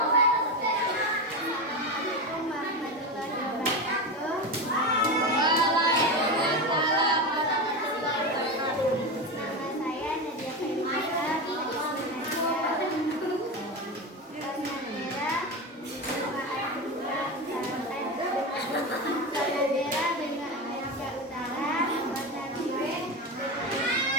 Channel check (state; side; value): normal; both; correlation 0.19